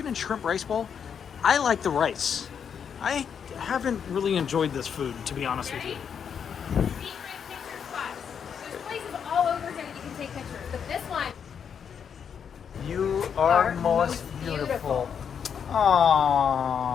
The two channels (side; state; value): right; quieter; 7.4 dB